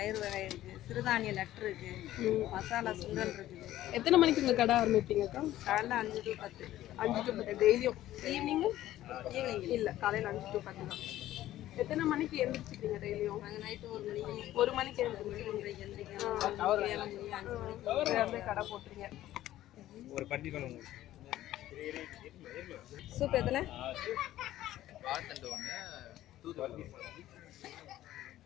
வகை இருக்குது, சிறுதானிய லட்டு இருக்குது, மசாலா சுண்டல் இருக்குது. எத்தனை மணிக்கு உங்கள் கடை ஆரம்பிப்பீங்கக்கா? காலைல 5 to 10. 5 to 10 டெய்லியும்? ஈவினிங்கும்? ஈவினிங் இல்லை, காலையில் 5 to 10 தான். எத்தனை மணிக்கு எழுந்திரிச்சிக்கிறீங்க டெய்லியும்? நாங்கள் நைட்டு 1 மணிக்கு எழுந்திரிச்சிங்க. எந்திரிக்கிறோம். 7 மணி 5 மணிக்கு கடை போட்டுறீங்க. ஒரு பட்டி பண்ணுங்க. சூப் எத்தனை? வாழைத்தண்டு ஒன்று, தூதுவளை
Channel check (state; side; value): quieter; right; 14.1 dB